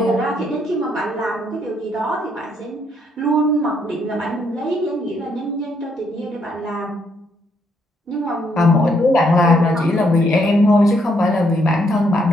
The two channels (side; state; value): both; normal; correlation 0.73